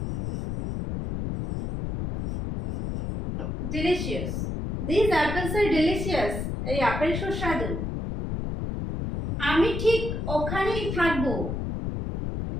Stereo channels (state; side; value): noise; left; rumble, 3 dB below the sound